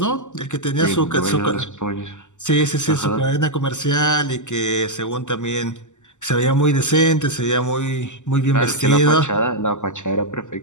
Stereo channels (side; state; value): right; late; 0.84 ms